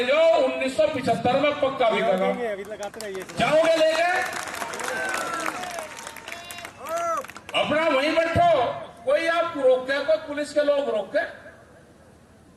जाओ, 1975 में पक्का बिकेगा। जाओगे लेके, अपना वहीं बैठो, कोई आपको रोकते, कोई पुलिस के लोग रोकते,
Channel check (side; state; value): both; identical; correlation 1.00